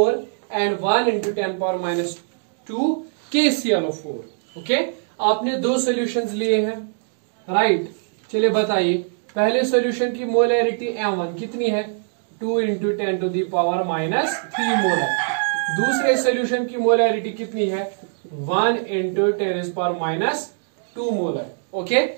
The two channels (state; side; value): silent; left; digital silence